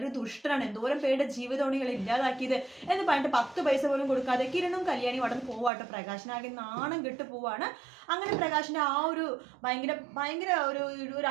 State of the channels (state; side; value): drops out; left; at 5.7 s